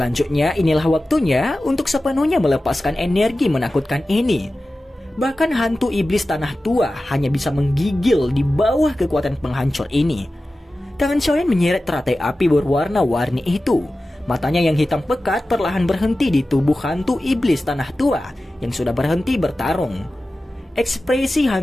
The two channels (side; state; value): both; normal; correlation 0.95